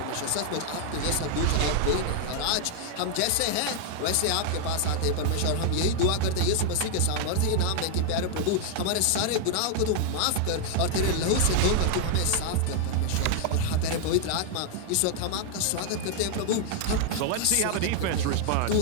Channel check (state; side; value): different; both; correlation 0.00